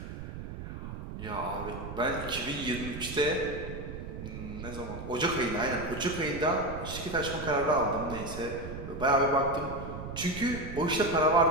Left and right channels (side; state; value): right; noise; rumble, 9 dB below the sound